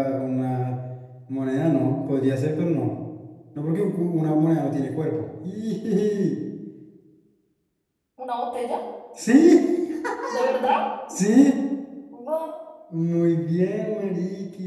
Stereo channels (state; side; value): identical; both; correlation 1.00